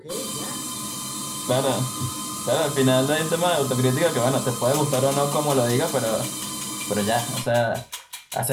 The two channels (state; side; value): identical; both; correlation 1.00